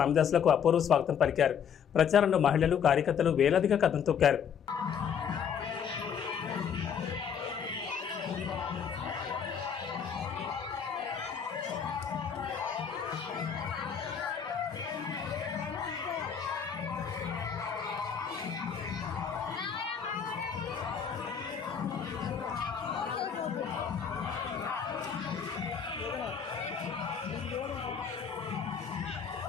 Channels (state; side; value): quieter; right; 7.5 dB